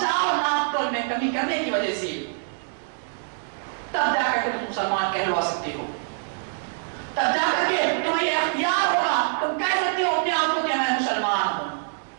ناپ تول میں کمی کرنے کی وجہ سے, تب جا کر کے تم مسلمان کہلوا سکتے ہو. تب جا کر کے تمہیں یہ اختیار ہوگا, تم کہہ سکتے ہو اپنے آپ کو کہ میں مسلمان ہوں.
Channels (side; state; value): left; silent; digital silence